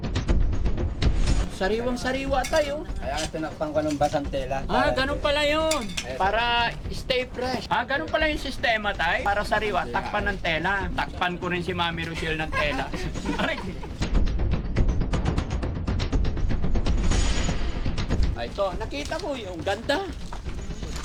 Sariwang-sariwa tayo. Kaya nga tinakpan ko ng basang tela. Ganun pala yun. Para stay fresh. Ganun pala yung sistema, tay. Para sariwa, takpan ng tela. Takpan ko rin si Mami Rochelle ng tela. Ito, nakita mo yung ganda.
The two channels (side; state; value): both; identical; correlation 1.00